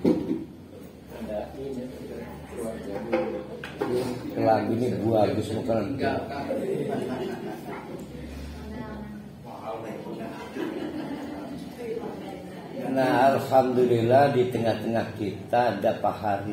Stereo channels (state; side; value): identical; both; correlation 1.00